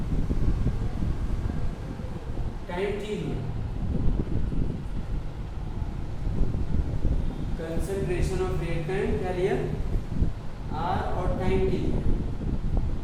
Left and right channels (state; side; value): identical; both; correlation 1.00